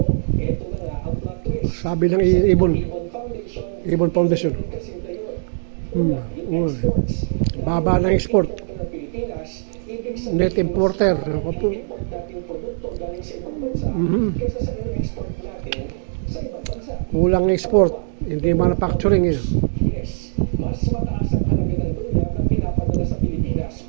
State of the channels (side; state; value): left; silent; digital silence